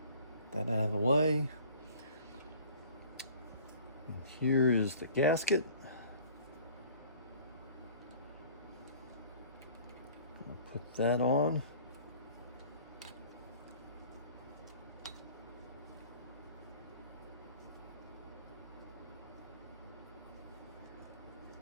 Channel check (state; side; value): inverted; both; correlation -0.49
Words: That out of the way. And here is the gasket. I'll put that on.